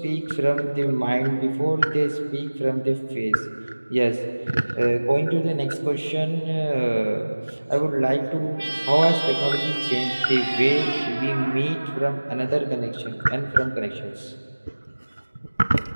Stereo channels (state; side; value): inverted; both; correlation -1.00